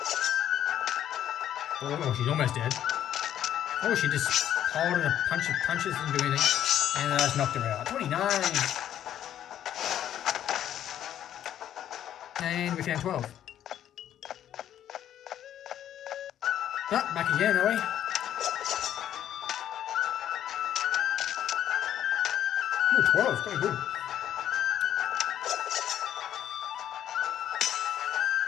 Oh, she's almost dead. Oh, she just piled in a punch of punches, didn't do anything. And I just knocked her out. 29. And we found 12. Oh, back again, are we? Oh, 12, very good.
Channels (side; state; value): right; quieter; 10.8 dB